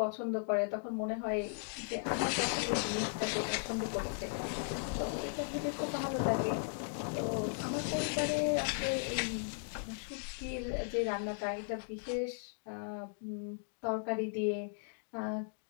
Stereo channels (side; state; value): right; silent; digital silence